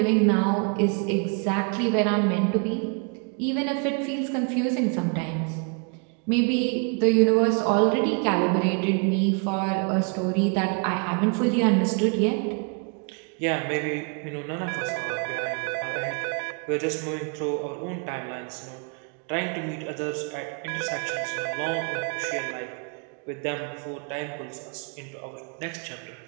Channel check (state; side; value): quieter; left; 37.3 dB